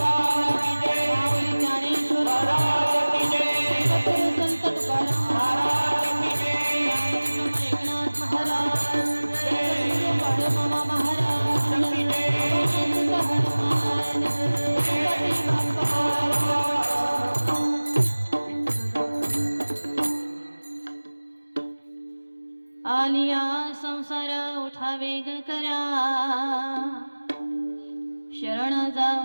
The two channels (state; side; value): inverted; both; correlation -1.00